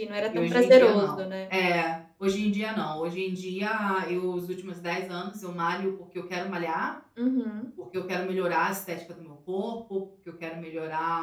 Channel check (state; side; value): identical; both; correlation 1.00